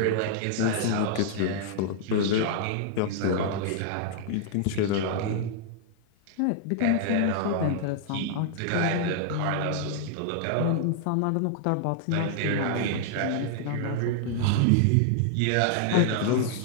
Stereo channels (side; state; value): both; different; correlation -0.01